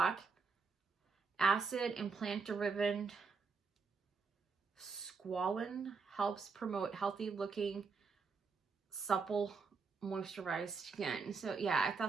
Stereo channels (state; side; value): quieter; left; 5.0 dB